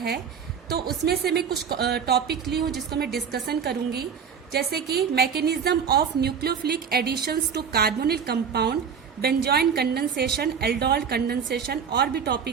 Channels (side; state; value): left; quieter; 7.0 dB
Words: तो उसमें से मैं कुछ टॉपिक ली हूँ जिसको मैं डिस्कशन करूंगी, जैसे कि mechanism of nucleophilic additions to carbonyl compound, benzoin condensation, aldol condensation, और भी